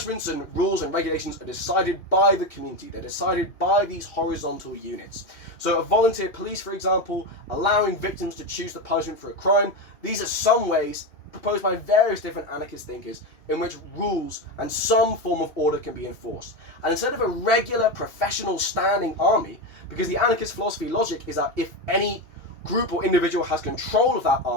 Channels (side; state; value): right; late; 2.9 ms